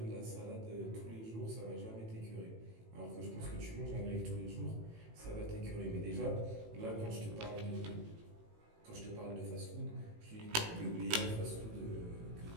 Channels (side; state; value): left; late; 18 ms